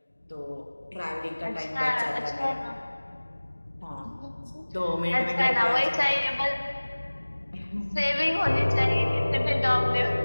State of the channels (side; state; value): both; inverted; correlation -1.00